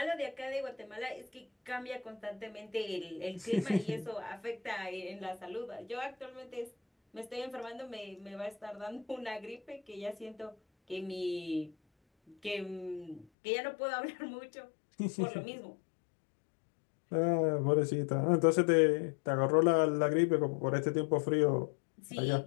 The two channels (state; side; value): drops out; right; at 13.2 s